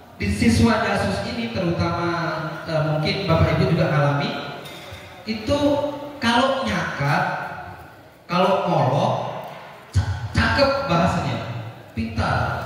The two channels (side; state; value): both; identical; correlation 1.00